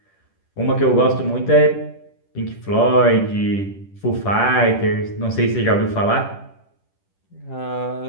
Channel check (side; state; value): right; late; 10 ms